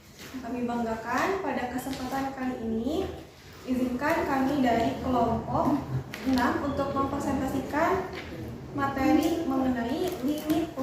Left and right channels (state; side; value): identical; both; correlation 1.00